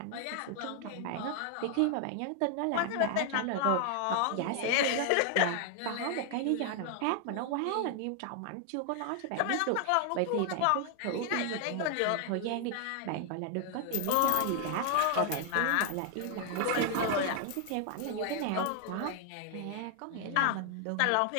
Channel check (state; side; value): different; both; correlation 0.00